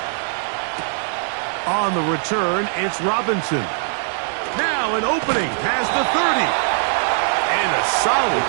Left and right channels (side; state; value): left; silent; digital silence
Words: On the return, it's Robinson. Now an opening past the 30. And a solid